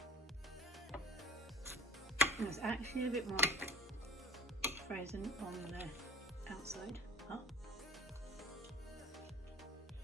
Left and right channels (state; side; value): normal; both; correlation 0.47